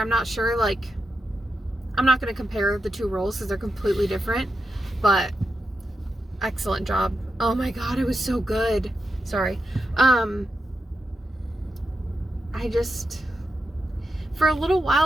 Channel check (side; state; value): both; normal; correlation 0.87